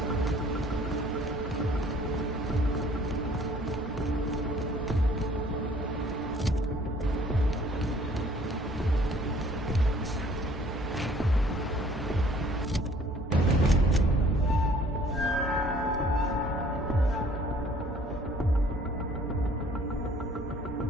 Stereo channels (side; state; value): both; normal; correlation 0.56